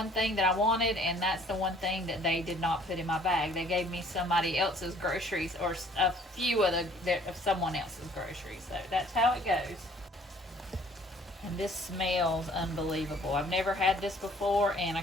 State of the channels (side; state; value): both; normal; correlation 0.57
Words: thing that I wanted, and that's the one thing that they did not put in my bag. They gave me somebody else's groceries, or a few of someone else's groceries, so that's how it goes. And this smells unbelievable. I've never had this before, and I